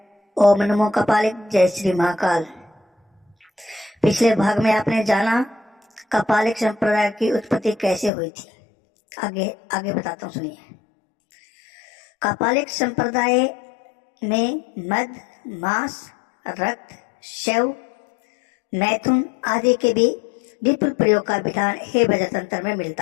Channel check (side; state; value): right; drops out; at 8.1 s